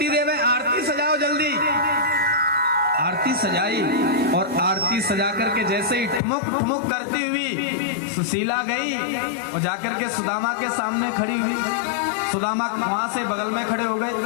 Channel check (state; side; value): drops out; right; at 6.2 s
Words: देव है, आरती सजाओ जल्दी। आरती सजाई और आरती सजा करके जैसे ही ठुमुक ठुमुक करती हुई सुशीला गई और जाकर के सुदामा के सामने खड़ी हुई। सुदामा वहां से बगल में खड़े हो गए।